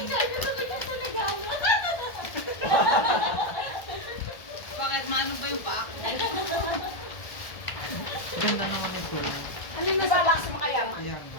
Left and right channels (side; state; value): right; late; 1.4 ms